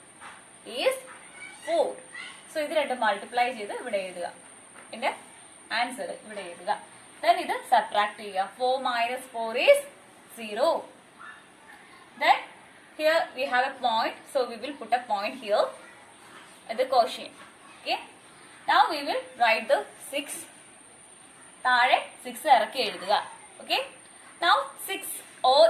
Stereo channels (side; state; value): both; identical; correlation 1.00